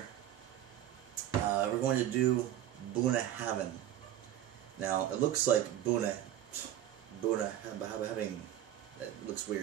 We're going to do Bunnahabhain. Now it looks like Bunnahabhain. It looks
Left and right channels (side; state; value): left; quieter; 12.0 dB